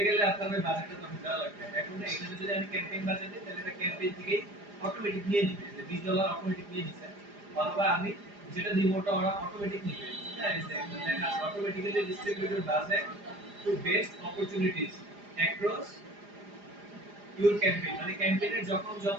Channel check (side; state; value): left; late; 4.9 ms